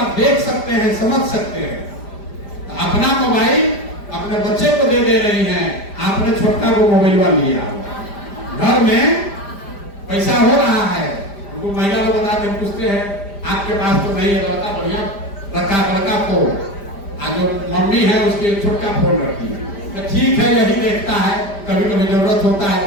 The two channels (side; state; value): right; late; 5.0 ms